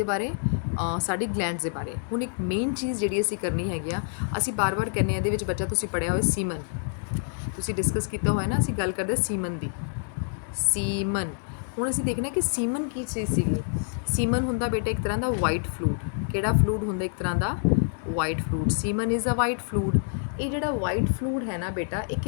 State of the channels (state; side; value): silent; right; digital silence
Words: ਬਾਰੇ, ਸਾਡੀ ਗਲੈਂਡਸ ਦੇ ਬਾਰੇ। ਹੁਣ ਇੱਕ ਮੇਨ ਚੀਜ਼ ਜਿਹੜੀ ਅਸੀਂ ਕਰਨੀ ਹੈਗੀ ਆ, ਅਸੀਂ ਬਾਰ-ਬਾਰ ਕਹਿੰਦੇ ਹਾਂ, ਇਹਦੇ ਵਿੱਚ ਬੱਚਾ ਤੁਸੀਂ ਪੜ੍ਹਿਆ ਹੋਇਆ ਸੀਮਨ, ਤੁਸੀਂ ਡਿਸਕਸ ਕੀਤਾ ਹੋਇਆ ਨਾ, ਅਸੀਂ ਗੱਲ ਕਰਦੇ ਸੀਮਨ ਦੀ, ਸੀਮਨ। ਹੁਣ ਅਸੀਂ ਦੇਖਣਾ ਕਿ ਸੀਮਨ ਕੀ ਚੀਜ਼ ਸੀਗੀ। ਸੀਮਨ ਹੁੰਦਾ ਬੇਟਾ ਇੱਕ ਤਰ੍ਹਾਂ ਦਾ ਵਾਈਟ ਫਲੂਡ। ਕਿਹੜਾ ਫਲੂਡ ਹੁੰਦਾ, ਇੱਕ ਤਰ੍ਹਾਂ ਦਾ white fluid. Semen is a white fluid. ਇਹ ਜਿਹੜਾ ਵਾਈਟ ਫਲੂਡ ਹੈ ਨਾ ਬੇਟਾ, ਇਹ